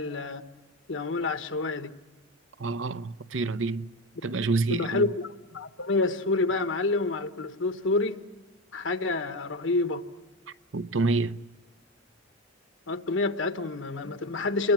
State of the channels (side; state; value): both; normal; correlation 0.17